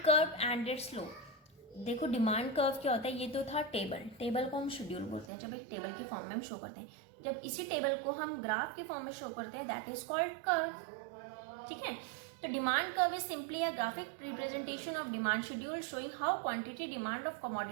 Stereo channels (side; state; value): left; drops out; at 5.3 s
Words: curve and it's slope. देखो डिमांड कर्व क्या होता है, ये तो था table को हम schedule बोलते हैं जब एक टेबल के फॉर्म में हम शो करते हैं. जब इसी टेबल को हम ग्राफ के फॉर्म में शो करते हैं, दैट इज कॉल्ड कर्व, ठीक है. तो demand curve is simply a graphic representation of demand schedule showing how quantity demand of